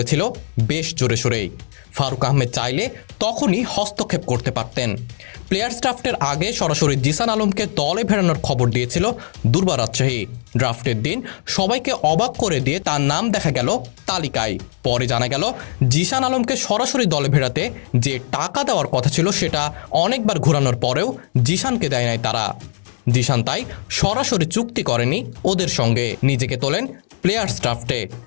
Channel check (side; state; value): right; silent; 66 dB below the other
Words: বেশ জোরে সোরেই। ফারুক আহমেদ চাইলে তখনই হস্তক্ষেপ করতে পারতেন। প্লেয়ার্স ড্রাফটের আগে সরাসরি জিসান আলমকে দলে ফেরানোর খবর দিয়েছিল দুর্বার রাজশাহী। ড্রাফটের দিন সবাইকে অবাক করে দিয়ে তার নাম দেখা গেল তালিকায়। পরে জানা গেল জিসান আলমকে সরাসরি দলে ফেরাতে যে টাকা দেওয়ার কথা ছিল সেটা অনেকবার ঘোরানোর পরেও জিসানকে দেয় নাই তারা। জিসান তাই সরাসরি চুক্তি করেনি ওদের সঙ্গে, নিজেকে তোলেন প্লেয়ার্স ড্রাফটে।